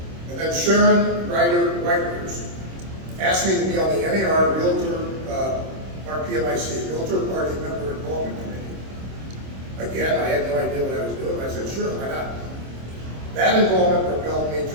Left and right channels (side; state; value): left; late; 26 ms